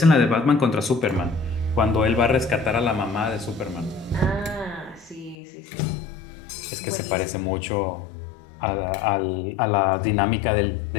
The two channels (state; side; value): drops out; right; at 5.4 s